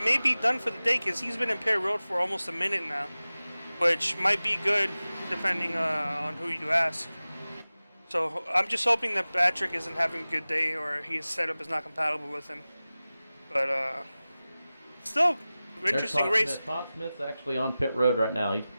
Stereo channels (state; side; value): inverted; both; correlation -0.97